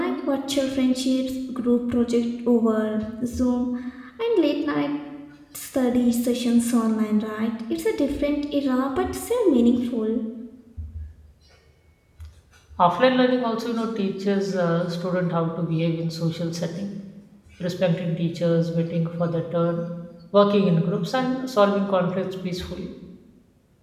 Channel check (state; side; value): identical; both; correlation 1.00